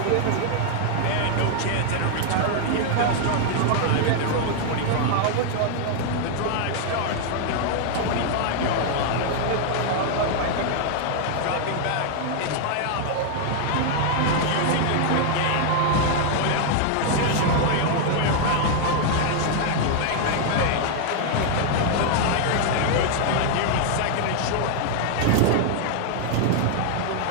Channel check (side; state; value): both; different; correlation 0.00